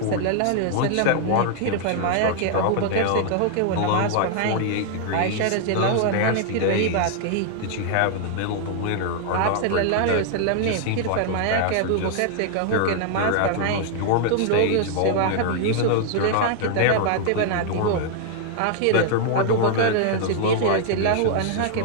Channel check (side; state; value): both; different; correlation 0.00